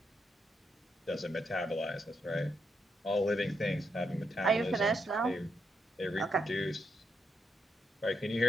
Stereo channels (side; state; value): both; normal; correlation 0.80